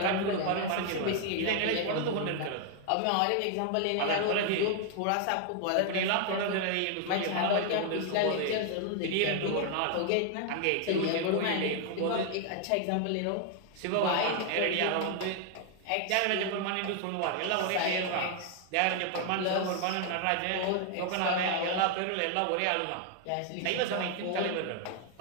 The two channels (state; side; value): different; both; correlation 0.00